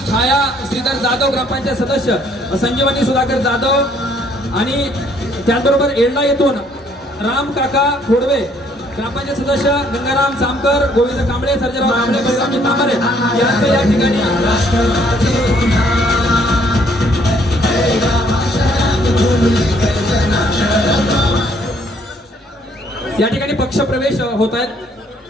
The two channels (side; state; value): both; normal; correlation 0.65